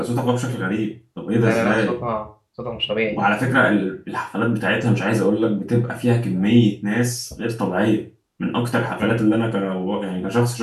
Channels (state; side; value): identical; both; correlation 1.00